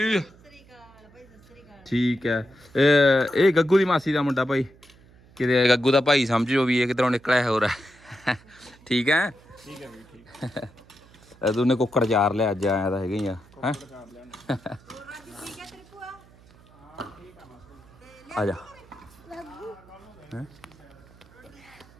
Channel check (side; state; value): right; noise; hum, 26 dB below the sound